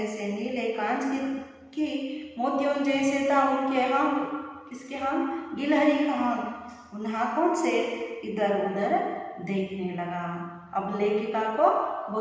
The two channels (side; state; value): both; identical; correlation 1.00